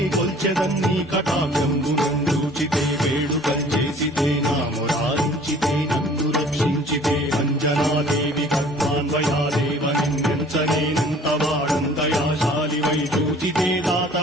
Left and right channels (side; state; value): both; normal; correlation 0.51